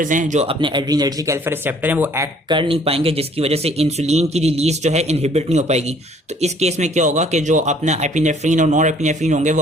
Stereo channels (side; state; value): both; normal; correlation 0.58